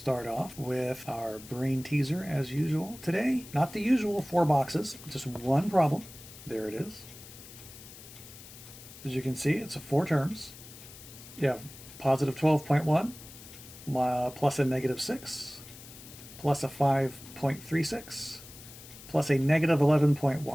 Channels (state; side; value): noise; left; hiss, 17 dB below the sound